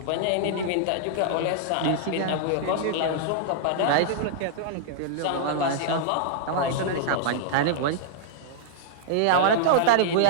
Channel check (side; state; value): both; different; correlation -0.01